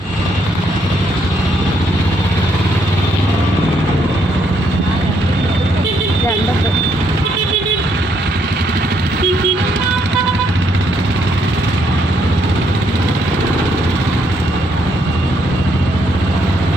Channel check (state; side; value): normal; both; correlation 0.73